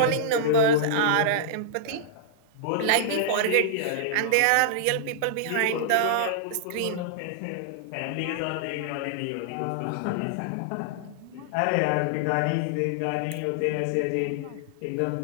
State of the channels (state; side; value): different; both; correlation -0.02